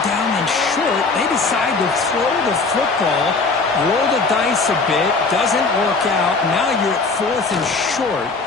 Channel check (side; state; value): right; quieter; 4.0 dB